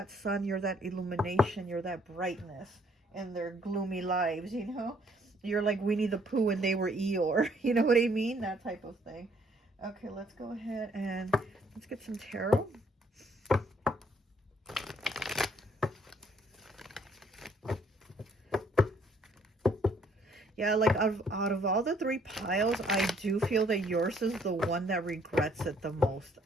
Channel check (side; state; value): both; normal; correlation 0.65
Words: sun, you're that illumination, you're that brightness in their gloomy lives, you know? You're like Winnie the Pooh and they were Eeyore. You know what I mean? That type of thing. Okay, let's go ahead and let's get some tarot. Yeah, like out of all the 3 piles, I do feel that yours is the one that regrets it the most,